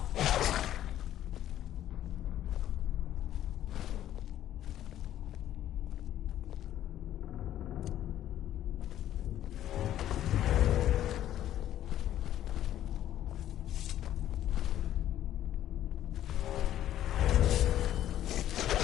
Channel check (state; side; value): quieter; right; 12.0 dB